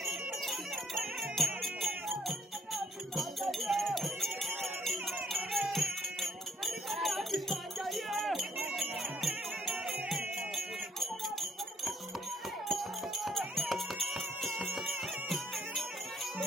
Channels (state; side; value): normal; both; correlation 0.66